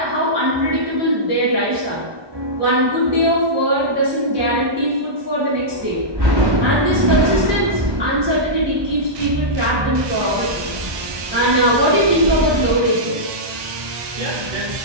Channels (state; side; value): late; left; 1.2 ms